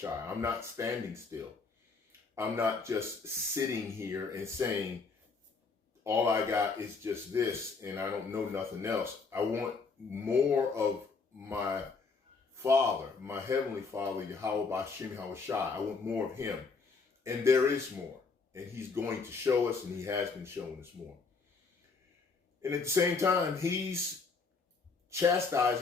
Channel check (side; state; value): right; quieter; 4.5 dB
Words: I'm not standing still. I'm not just sitting here and saying, all I got is just this and I don't know nothing else. I want more of my Father, my Heavenly Father, YAHAWSHI. I want more of him. And there is more. And he's going to show us, and he has been showing us more. And at the same time, he's